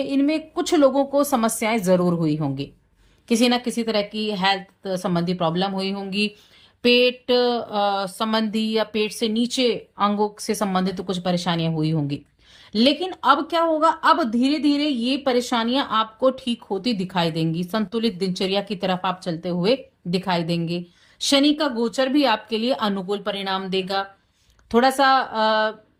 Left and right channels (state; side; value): identical; both; correlation 1.00